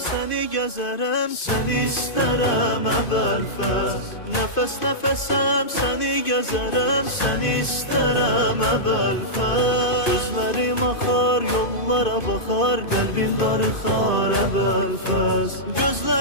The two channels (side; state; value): right; late; 2.5 ms